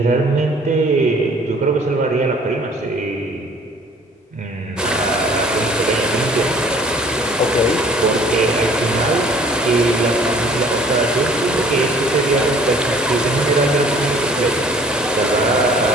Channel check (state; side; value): normal; both; correlation 0.52